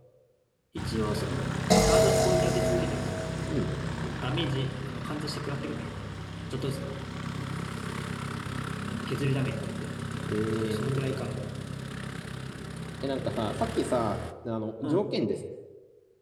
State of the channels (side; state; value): both; identical; correlation 1.00